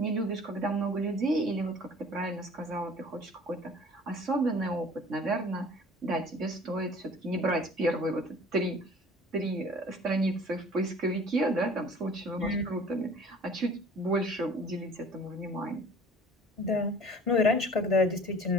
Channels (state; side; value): normal; both; correlation 0.48